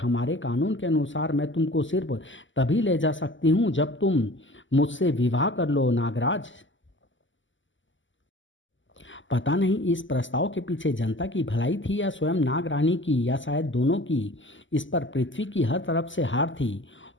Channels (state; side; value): late; right; 0.55 ms